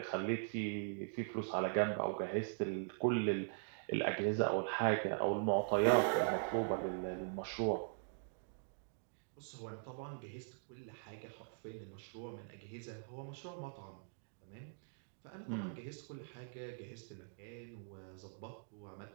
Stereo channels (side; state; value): left; silent; digital silence